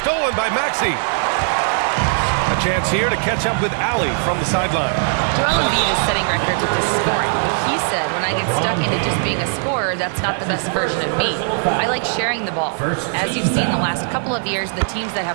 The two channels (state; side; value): silent; left; digital silence